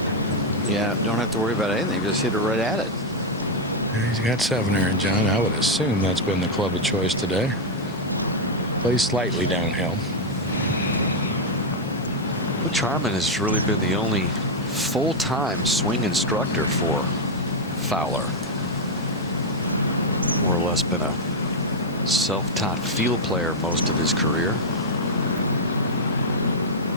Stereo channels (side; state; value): both; normal; correlation 0.00